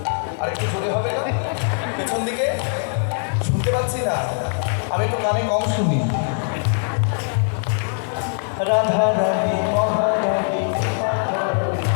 আরেকটু জোরে হবে না? পেছন দিকে শুনতে পাচ্ছি না, আমি একটু কানে কম শুনি। রাধা রানী মহারানী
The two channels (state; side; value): silent; right; 59 dB below the other